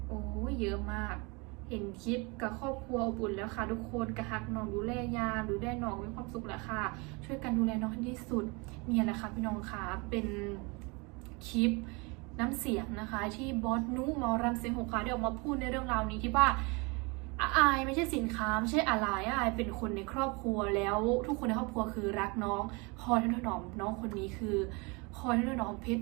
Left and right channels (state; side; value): quieter; left; 28.6 dB